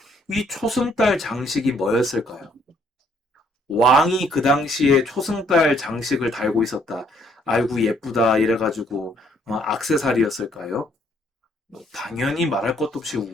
이 초승달 장식이 뭐였을까요? 왕이 그 당시에 초승달 장식을 달고 있었다. 아이고 예쁘다 이래가지고 액세서리였을까요? 당연히 말할 것도 없이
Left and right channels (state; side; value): normal; both; correlation 0.66